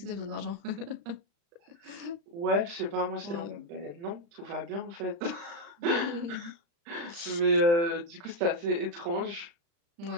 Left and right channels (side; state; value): left; late; 35 ms